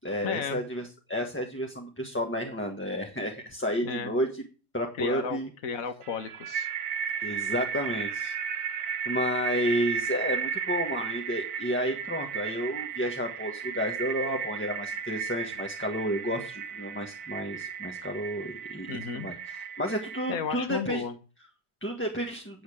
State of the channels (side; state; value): both; normal; correlation 0.17